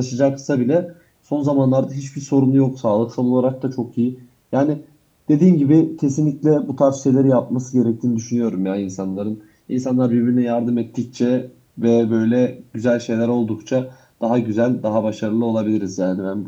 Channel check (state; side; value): identical; both; correlation 1.00